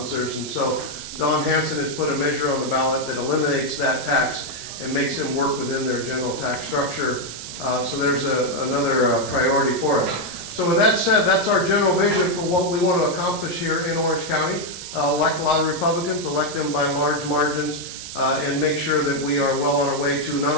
And so Don Hansen has put a measure on the ballot that eliminates that tax and makes them work within their general tax structure. So there's another priority for us. So with that said, that's our general vision for what we want to accomplish here in Orange County. Elect a lot of Republicans, elect them by large margins, and make sure that we are well on our way to not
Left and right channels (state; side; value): noise; right; hiss, 10 dB below the sound